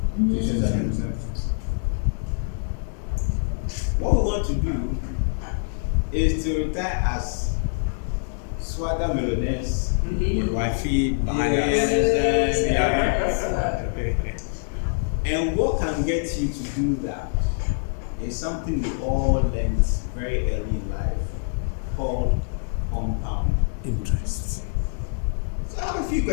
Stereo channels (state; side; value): silent; right; 62 dB below the other